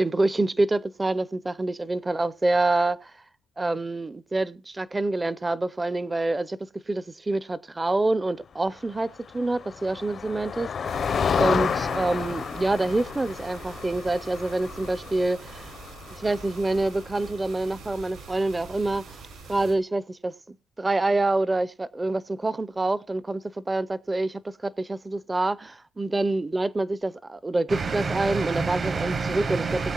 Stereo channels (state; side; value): normal; both; correlation 0.94